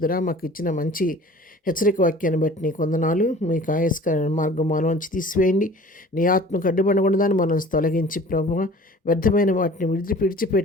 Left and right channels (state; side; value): normal; both; correlation 0.46